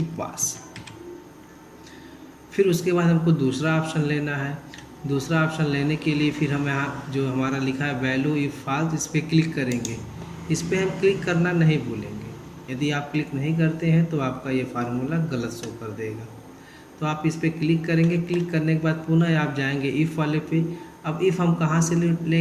पास। फिर उसके बाद हमको दूसरा ऑप्शन लेना है। दूसरा ऑप्शन लेने के लिए फिर हम यहाँ जो हमारा लिखा है वैल्यू इफ फॉल्स, इस पर क्लिक करेंगे। इस पर हम क्लिक करना नहीं भूलेंगे। यदि आप क्लिक नहीं करते हैं तो आपका ये फार्मूला गलत शो कर देगा। तो आप इस पर क्लिक करेंगे। क्लिक करने के बाद पुनः आप जाएंगे इफ़ वाले पे। अब इफ़ हम कहाँ से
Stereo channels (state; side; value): identical; both; correlation 1.00